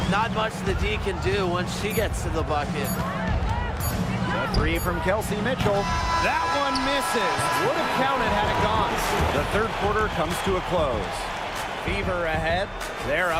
Not much the D can do once she gets to the bucket. The three from Kelsey Mitchell. That one misses. Would have counted had it gone. The third quarter comes to a close. Fever ahead. They're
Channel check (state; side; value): identical; both; correlation 1.00